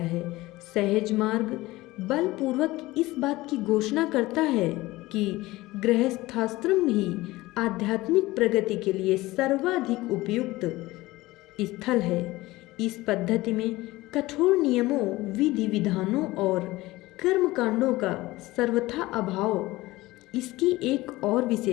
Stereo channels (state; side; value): quieter; right; 19.0 dB